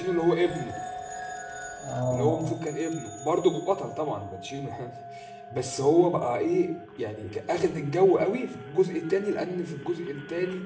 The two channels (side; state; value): both; identical; correlation 1.00